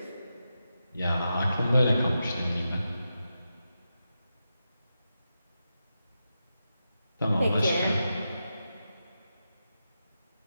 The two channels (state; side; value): inverted; both; correlation -0.89